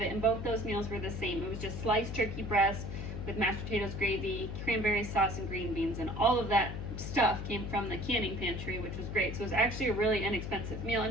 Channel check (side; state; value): left; noise; hum, 6 dB below the sound